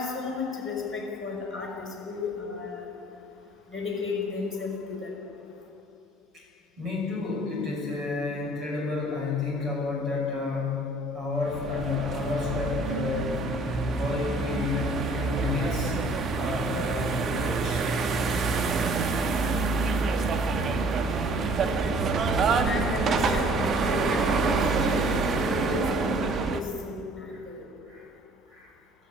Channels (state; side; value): normal; both; correlation 0.54